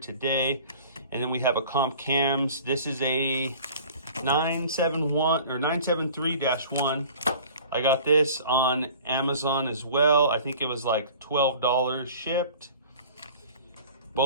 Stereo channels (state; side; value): inverted; both; correlation -0.46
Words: And then we have a comp cams. This is a 971 or 973-1. I got this on Amazon as well. I think it was like $12 shipped.